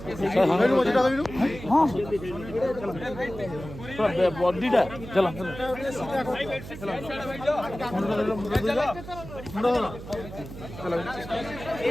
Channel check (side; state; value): right; noise; hum, 12 dB below the sound